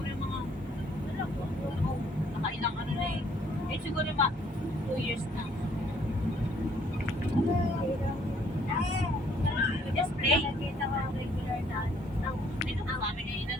yung mga nakailang ano na eh. Eh siguro yung 2 years na. Just play. Nakita ko ang regular na dito na kami na yun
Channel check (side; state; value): both; normal; correlation 0.63